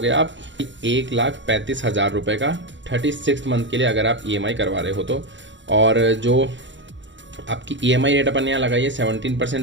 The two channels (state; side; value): late; left; 0.54 ms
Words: आप 1,35,000 रुपये का 36 मंथ के लिए अगर आप EMI करवा रहे हो तो। और जो आपकी EMI रेट अपन यहाँ लगाइए